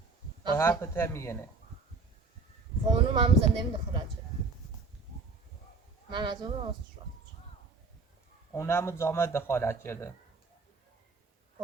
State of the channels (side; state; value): left; quieter; 4.1 dB